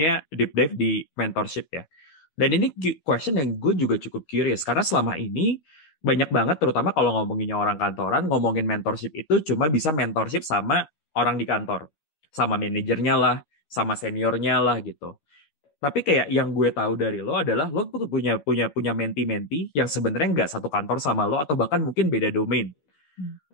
deep dive di mentorship ya. Dan ini question yang gue juga cukup curious. Karena selama ini banyak banget, terutama kalau ngomonginnya orang kantoran, ngomongin mentorship itu cuma bisa mentorship sama orang di kantor. Sama manajernya lah, sama seniornya lah gitu. Tapi kayak yang gue tahu dari lo adalah lo tuh punya menti-menti yang sebenarnya nggak satu kantor sama lo atau bahkan mungkin beda domain.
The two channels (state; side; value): late; right; 13 ms